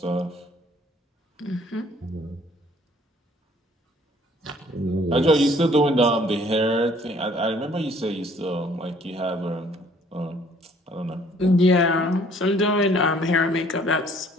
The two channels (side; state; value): both; normal; correlation 0.58